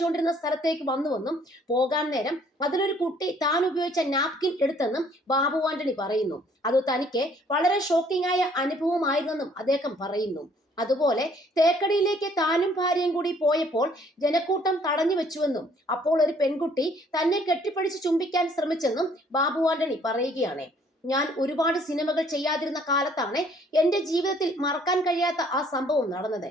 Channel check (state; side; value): normal; both; correlation 0.60